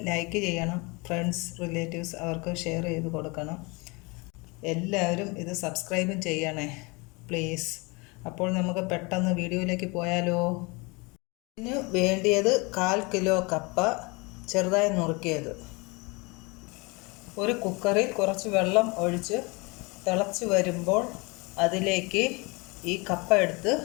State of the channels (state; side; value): quieter; right; 27.7 dB